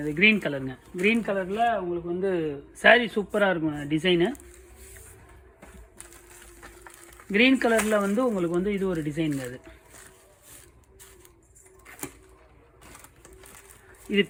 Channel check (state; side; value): identical; both; correlation 1.00